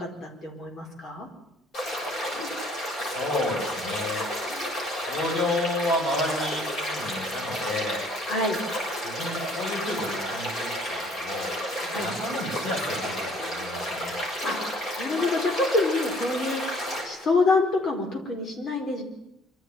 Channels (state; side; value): normal; both; correlation 0.58